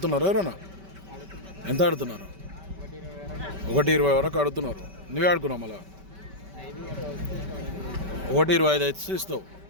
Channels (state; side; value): late; left; 5.2 ms